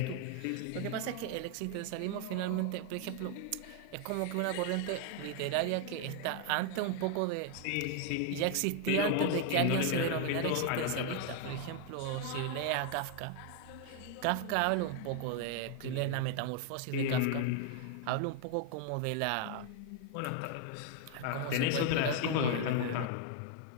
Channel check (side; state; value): both; different; correlation 0.00